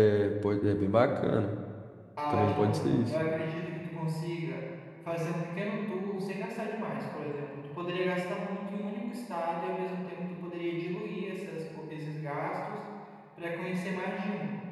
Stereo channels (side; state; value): both; identical; correlation 1.00